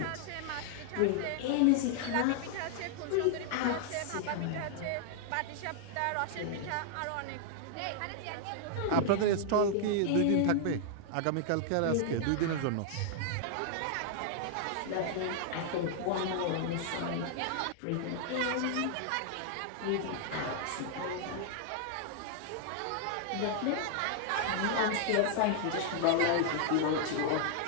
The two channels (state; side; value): different; both; correlation -0.01